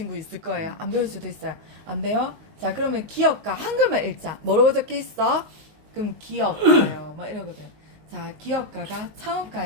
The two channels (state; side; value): late; left; 19 ms